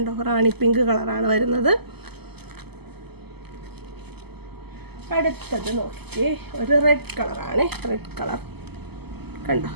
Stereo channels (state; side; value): late; left; 0.97 ms